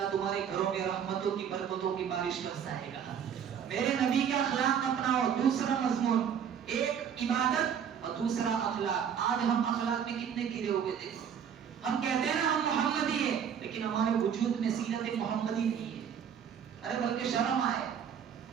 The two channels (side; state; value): left; quieter; 8.1 dB